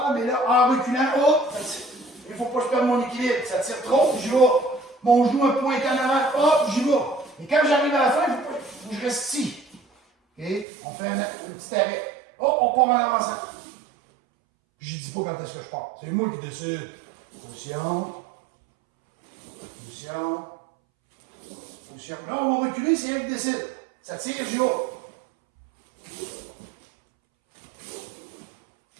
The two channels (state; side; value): drops out; left; at 10.7 s